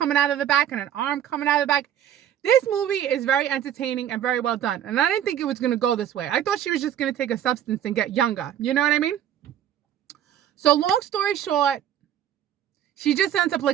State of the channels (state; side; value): quieter; left; 10.5 dB